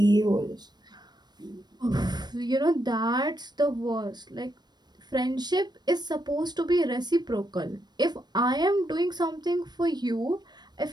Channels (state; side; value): late; left; 0.20 ms